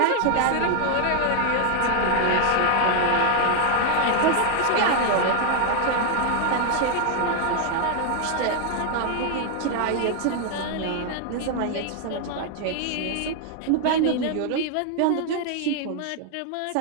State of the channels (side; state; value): both; different; correlation 0.00